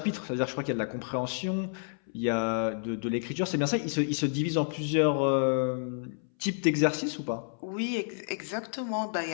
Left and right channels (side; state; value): right; silent; 58 dB below the other